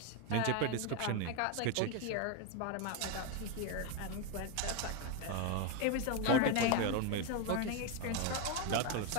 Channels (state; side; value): different; both; correlation 0.02